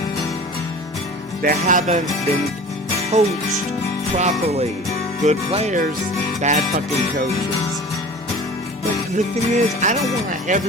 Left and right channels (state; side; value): normal; both; correlation 0.40